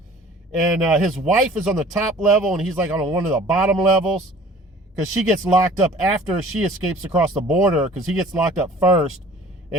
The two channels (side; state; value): both; normal; correlation 0.48